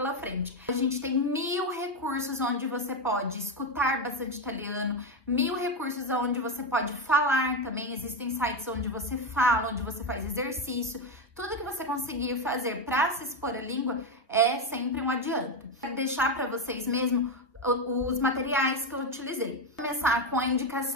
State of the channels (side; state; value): both; normal; correlation 0.10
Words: frente. A gente tem 1000 recursos onde você pode escutar bastante italiano, 1000 recursos onde você pode falar também, existem sites onde você fala, onde você faz exercício. Tudo que você conseguir fazer para se expor à língua é sempre um adianto. Quero deixar para vocês mesmo os materiais que eu utilizei. Vou começar com a